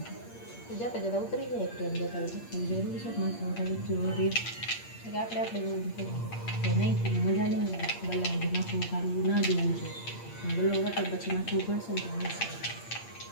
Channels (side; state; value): right; late; 8.6 ms